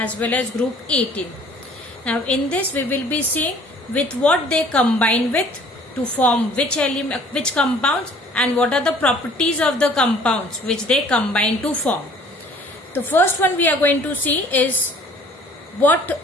well as group 18. Now in this we will be seeing with what they combine with to form which element, which compounds, and what are the properties of the compounds which they combine to form. The first one we are going to see is what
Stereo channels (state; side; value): normal; both; correlation 0.54